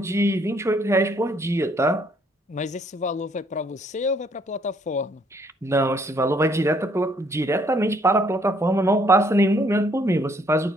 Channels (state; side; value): normal; both; correlation 0.66